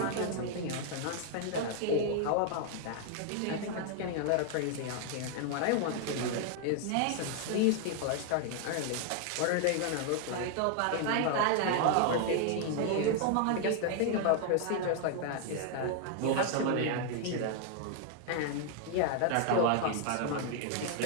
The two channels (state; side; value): different; both; correlation 0.00